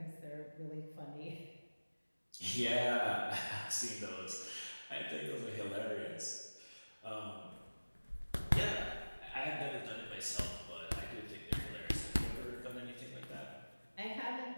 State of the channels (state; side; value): inverted; both; correlation -1.00